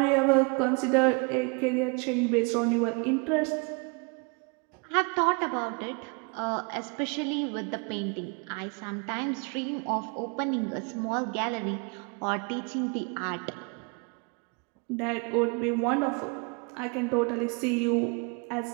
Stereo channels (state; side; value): quieter; left; 33.6 dB